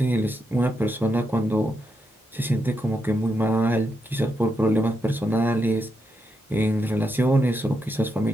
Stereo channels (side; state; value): both; normal; correlation 0.83